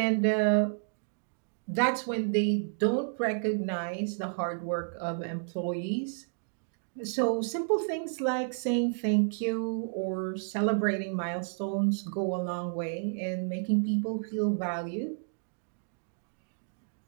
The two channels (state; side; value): silent; left; digital silence